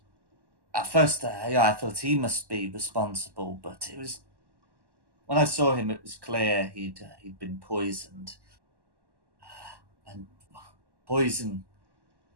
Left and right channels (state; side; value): late; left; 1.1 ms